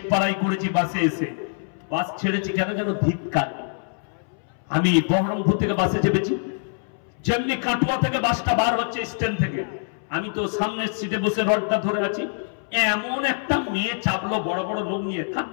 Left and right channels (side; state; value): right; silent; 62 dB below the other